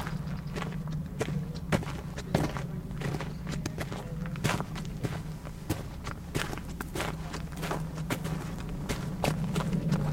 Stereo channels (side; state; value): both; identical; correlation 1.00